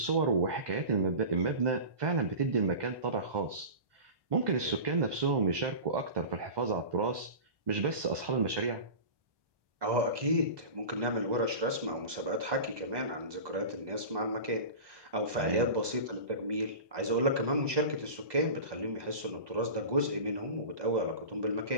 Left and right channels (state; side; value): late; left; 1.2 ms